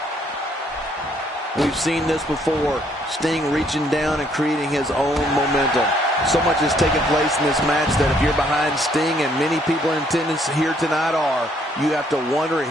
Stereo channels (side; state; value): both; normal; correlation 0.67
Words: We've seen this before. Sting reaching down and creating his own momentum. So much has taken place in this match that if you're behind Sting, and many people in attendance here tonight are, you have to wonder